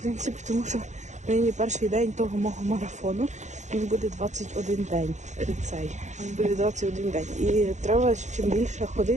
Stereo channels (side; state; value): left; late; 0.34 ms